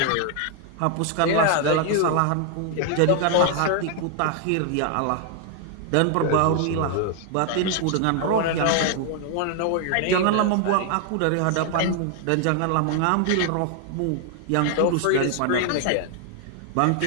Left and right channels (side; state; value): both; different; correlation 0.00